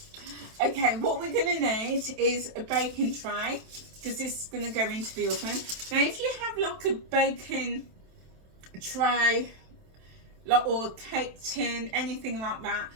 Okay, what we're going to need is a baking tray, because this is going to go into the oven. Now, if you have like a baking tray, like, or a cake tin, anything like that,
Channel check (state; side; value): late; left; 27 ms